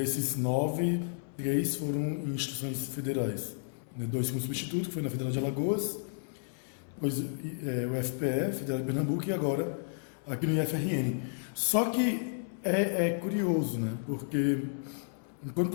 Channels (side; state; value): right; silent; 56 dB below the other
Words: 9, 3 foram em instituições federais. 2 com substituto, que foi na Federal de Alagoas, depois o FPE, Federal de Pernambuco, e agora aqui no IFRN. Só que é curioso, né? Porque enquanto